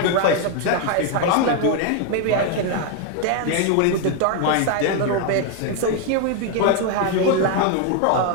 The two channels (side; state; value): both; different; correlation 0.01